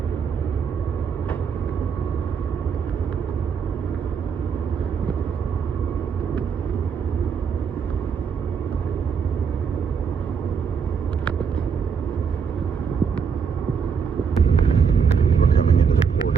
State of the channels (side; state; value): left; quieter; 6.4 dB